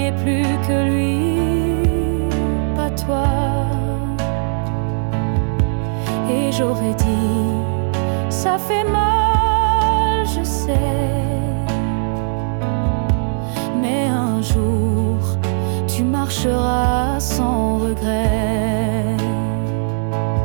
plus que lui, pas toi. Et j'aurais dit, ça fait mal, je sais, mais un jour tu marcheras sans regret.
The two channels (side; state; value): left; silent; digital silence